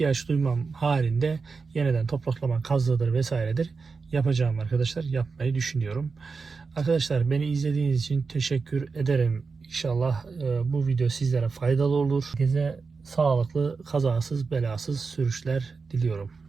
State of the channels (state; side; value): quieter; left; 4.7 dB